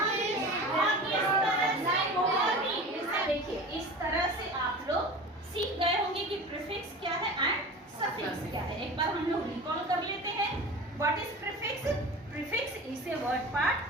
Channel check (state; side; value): normal; both; correlation 0.35